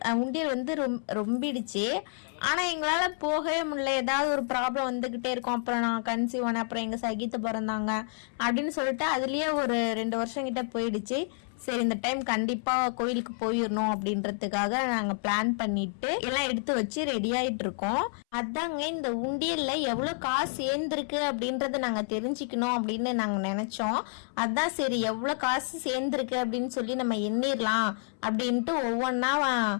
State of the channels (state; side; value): silent; right; 58 dB below the other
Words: உண்டியல் வந்து ரொம்பிடுச்சு. ஆனால் எங்களால் போகவே முடியல. ஏதாவது ஒரு ப்ராப்ளம் வந்துக்கிட்டே இருக்கும். அப்புறம் நான் கன்சீவ் ஆனேன், அப்புறம் எங்கள் சகித்து பிறந்தாங்க அப்படின்னு சொல்லிட்டு அதுலேயே ஒரு 2 வருஷம் கிட்ட போயிடுச்சு. சரி, இந்த டைம் கண்டிப்பாக கோயிலுக்கு போயிடணும் அப்படின்றதுக்காக நாங்கள் பிளான் பண்ணிட்டு எல்லாம் எடுத்து வச்சு ரெடி ஆகிட்டு இருக்கோம். அதாங்க இந்த உண்டியலில் எவ்வளோ காசு சேர்ந்துருக்கு அப்படின்றத நாங்கள் தெரிஞ்சுக்கணும் அப்படின்னு நாங்கள் நினச்சோம். அதான் சரி எவ்வளோ காசு சேர்ந்துருக்கு அப்படின்னு சொல்லி நம்ம எண்ணிடலாம் அப்படின்ட்டு ஒவ்வொன்றா